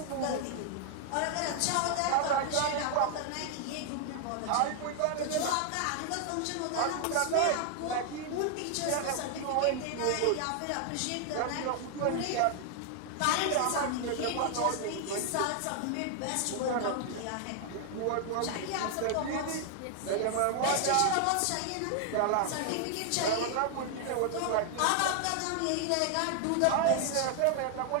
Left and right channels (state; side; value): different; both; correlation 0.00